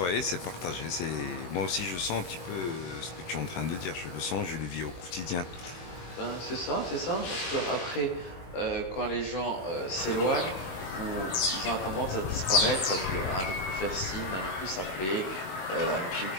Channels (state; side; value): late; right; 21 ms